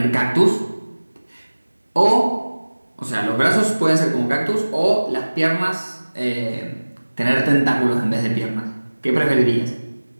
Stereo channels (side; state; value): both; inverted; correlation -1.00